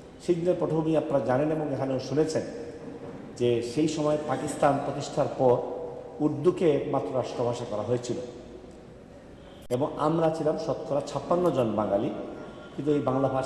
সেই দিনের পটভূমি আপনারা জানেন এবং এখানেও শুনেছেন যে সেই সময় পাকিস্তান প্রতিষ্ঠার পর উর্দুকে একমাত্র রাষ্ট্রভাষা করা হয়েছিল এবং আমরা ছিলাম শতকরা 56 জন বাঙালি, কিন্তু এই বাংলা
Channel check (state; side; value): identical; both; correlation 1.00